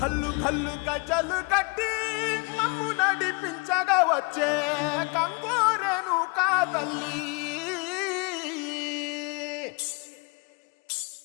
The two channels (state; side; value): quieter; right; 30.9 dB